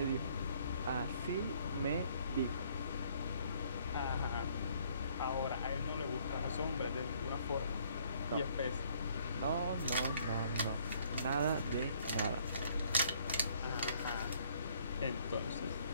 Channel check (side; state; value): both; inverted; correlation -0.63